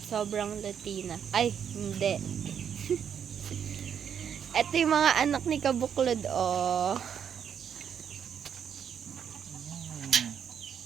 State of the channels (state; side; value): quieter; left; 8.1 dB